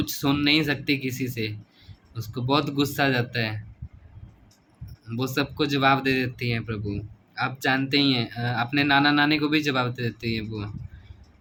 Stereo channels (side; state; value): both; identical; correlation 1.00